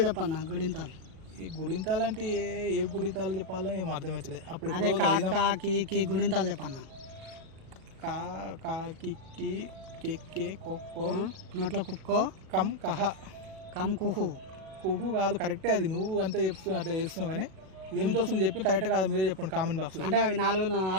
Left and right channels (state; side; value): late; left; 37 ms